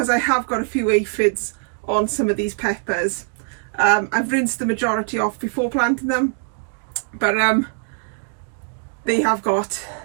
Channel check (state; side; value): silent; left; 60 dB below the other